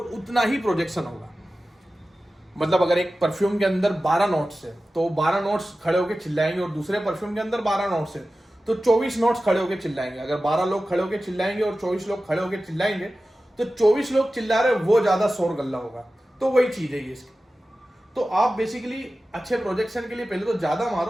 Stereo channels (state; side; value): normal; both; correlation 0.95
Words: ही प्रोजेक्शन होगा। मतलब अगर एक परफ्यूम के अंदर 12 नोट्स है तो 12 नोट्स खड़े होकर चिल्लाएंगे, और दूसरे परफ्यूम के अंदर 12 नोट्स है तो 24 नोट्स खड़े होकर चिल्लाएंगे। अगर 12 लोग खड़े होकर चिल्लाएंगे और 24 लोग खड़े होकर चिल्लाएंगे, तो 24 लोग चिल्ला रहे, वो ज्यादा शोर गल्ला होगा। तो वही चीज है ये इसकी। तो आप बेसिकली अच्छे प्रोजेक्शन के लिए पहले तो ज्यादा